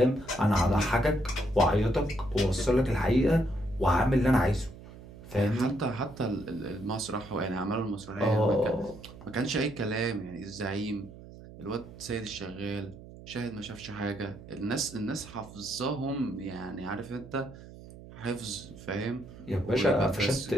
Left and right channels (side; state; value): right; noise; hum, 17 dB below the sound